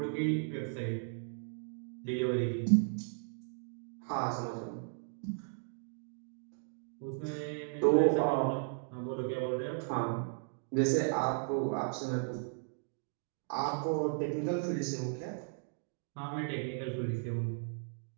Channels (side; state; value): left; silent; digital silence